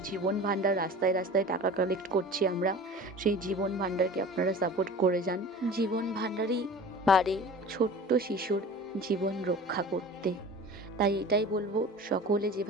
জীবন ভাণ্ডার রাস্তায় রাস্তায় টাকা কালেক্ট করছি আমরা, সেই জীবন ভাণ্ডারকে আপনারা সাপোর্ট করে যান। জীবন ভাণ্ডারই পারে ছোট্ট শিশুর জীবন রক্ষা করতে। তাই এটাই বলবো, সকলে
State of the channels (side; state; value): both; normal; correlation 0.39